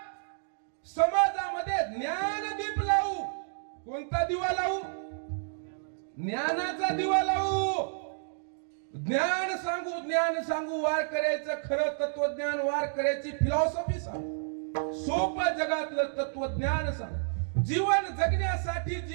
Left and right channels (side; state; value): left; silent; digital silence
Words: कोणता दिवा लावू? ज्ञानाचा दिवा लावू. ज्ञान सांगू वारकऱ्याचं खरं तत्वज्ञान, वारकऱ्याची फिलॉसॉफी सांगू, सोपं जगातलं तत्वज्ञान सांगू, जीवन जगण्यासाठी,